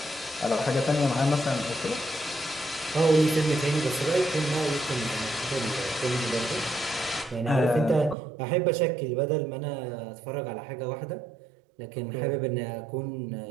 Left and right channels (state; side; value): drops out; left; at 8.2 s